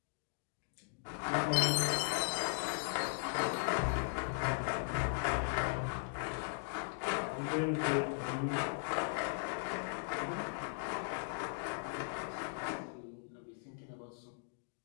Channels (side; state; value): right; silent; digital silence